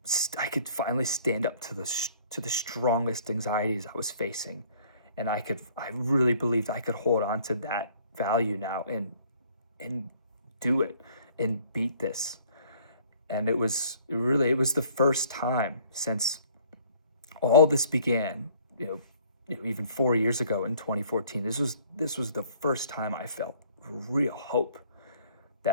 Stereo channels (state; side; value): inverted; both; correlation -0.58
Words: stand up to the strongest anxieties I was facing, and I really believed I could hold on to that value now and do it and beat this. And it was the first time since all this began, even 4 years ago in 2014. This was the first time I felt real hope